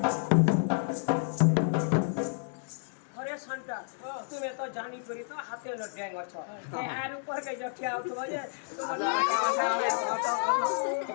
तुम्हें तो जानी करी तो हाथे लग जाएगा अच्छा ये आर ऊपर के जो क्या होता है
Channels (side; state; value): right; silent; digital silence